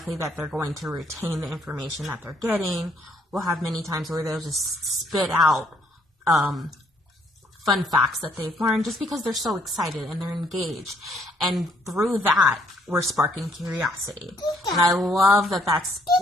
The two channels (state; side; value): normal; both; correlation 0.67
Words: that they're going to retain the information that they're getting. We'll have many times where they'll just spit out fun facts that they've learned just because they're so excited and they're engaged. And through that, we're sparking curiosity. And I love that that's